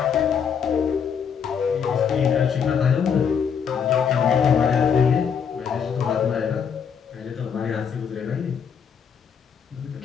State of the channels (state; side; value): quieter; right; 7.1 dB